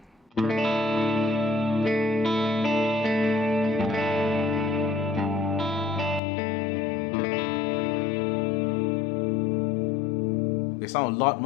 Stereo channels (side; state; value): right; drops out; at 6.2 s